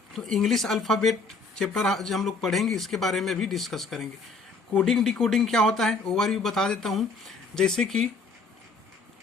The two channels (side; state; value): right; quieter; 3.9 dB